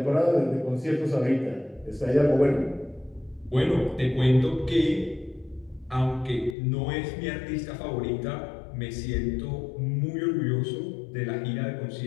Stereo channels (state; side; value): drops out; right; at 6.6 s